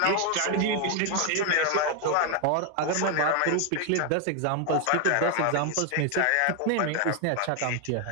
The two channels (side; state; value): both; different; correlation 0.00